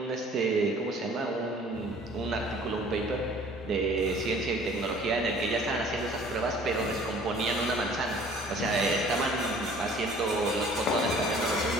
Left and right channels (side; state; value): both; normal; correlation 0.52